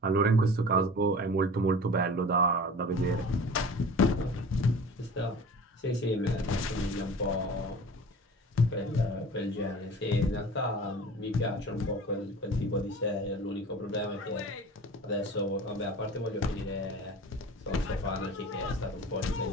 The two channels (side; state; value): both; normal; correlation 0.40